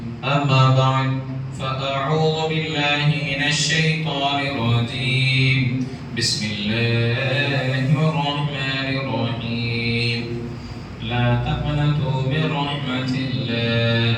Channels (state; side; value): identical; both; correlation 1.00